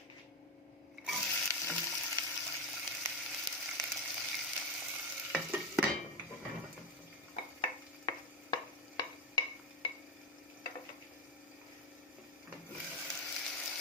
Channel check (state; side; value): normal; both; correlation 0.12